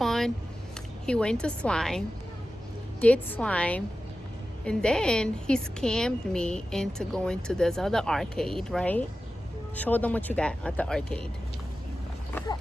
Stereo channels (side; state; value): both; normal; correlation 0.94